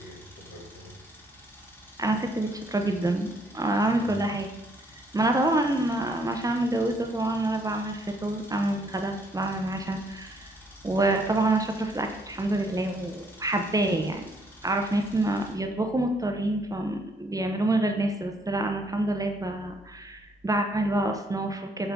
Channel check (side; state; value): both; normal; correlation 0.68